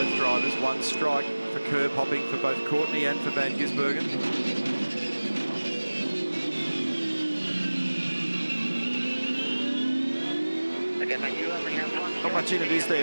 drivers. 1 strike for curb hopping for both Courtney and for Van Gisbergen. Not much in it, is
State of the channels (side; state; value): both; inverted; correlation -1.00